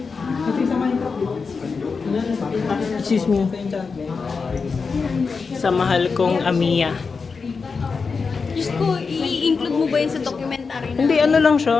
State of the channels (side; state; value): right; quieter; 4.9 dB